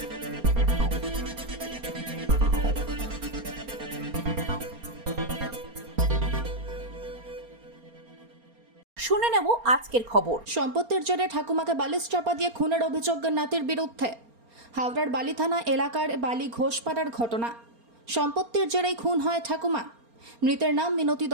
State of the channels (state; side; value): late; left; 4.3 ms